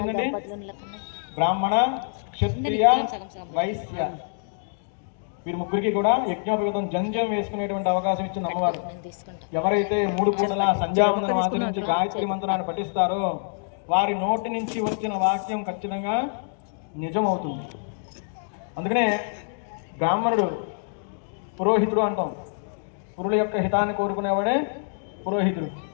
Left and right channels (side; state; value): right; silent; digital silence